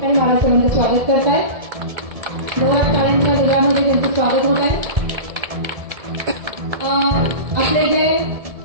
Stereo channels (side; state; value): left; late; 1.7 ms